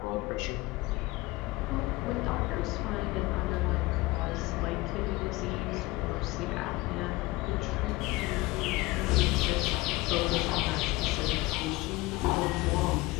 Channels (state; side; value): quieter; right; 20.9 dB